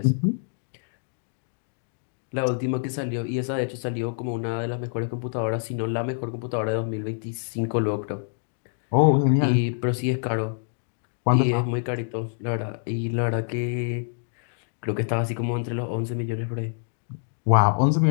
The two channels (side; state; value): right; silent; digital silence